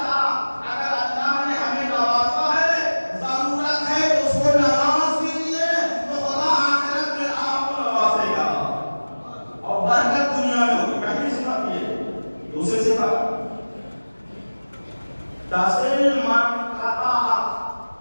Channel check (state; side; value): inverted; both; correlation -1.00